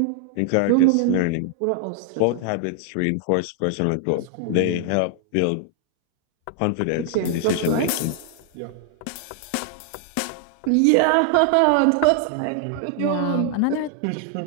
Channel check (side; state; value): both; different; correlation 0.00